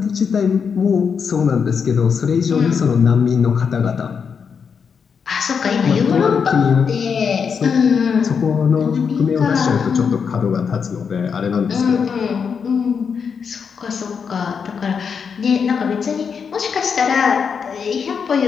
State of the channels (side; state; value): right; quieter; 6.3 dB